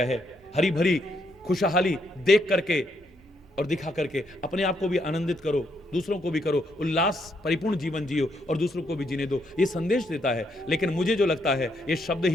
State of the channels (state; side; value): normal; both; correlation 0.75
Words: है। हरी भरी खुशहाली देख करके और दिखा करके अपने आप को भी आनंदित करो, दूसरों को भी करो, उल्लास परिपूर्ण जीवन जियो और दूसरों को भी जीने दो, ये संदेश देता है। लेकिन मुझे जो लगता है ये शब्द